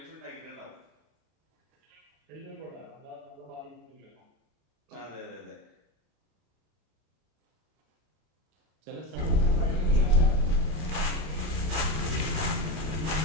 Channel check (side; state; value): left; late; 32 ms